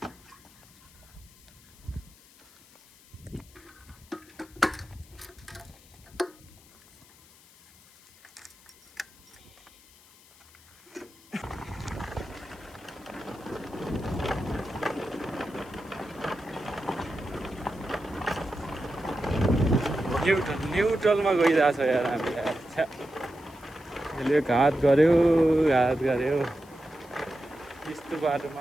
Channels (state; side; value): noise; left; hiss, 25 dB below the sound